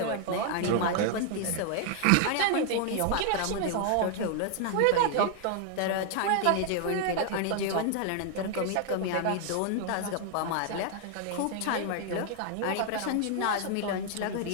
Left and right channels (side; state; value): both; different; correlation 0.00